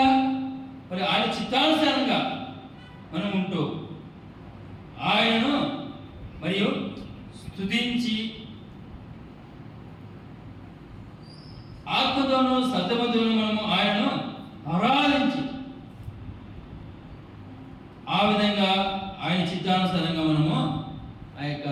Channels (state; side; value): identical; both; correlation 1.00